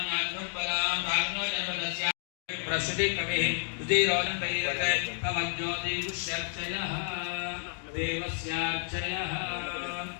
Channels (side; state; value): right; silent; digital silence